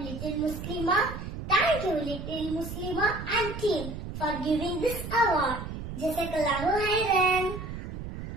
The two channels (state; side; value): noise; right; rumble, 8 dB below the sound